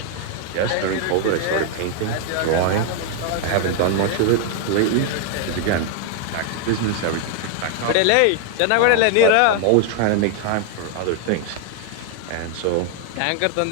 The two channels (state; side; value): different; both; correlation 0.00